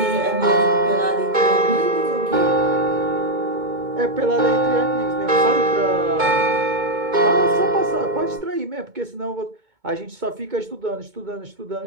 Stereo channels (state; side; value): late; left; 2.2 ms